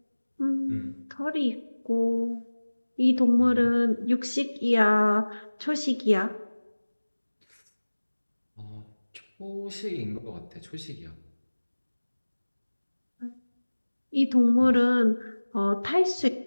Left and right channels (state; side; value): inverted; both; correlation -1.00